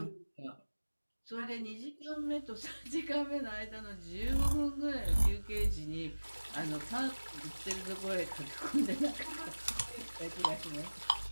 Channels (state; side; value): inverted; both; correlation -1.00